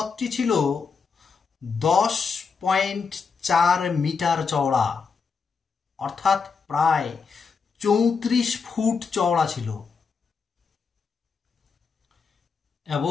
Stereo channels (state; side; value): quieter; right; 5.4 dB